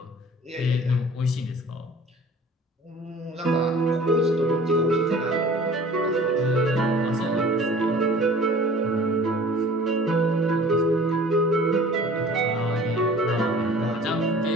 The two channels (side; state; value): both; normal; correlation 0.47